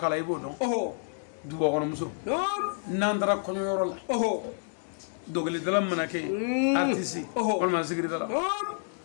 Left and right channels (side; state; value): right; silent; digital silence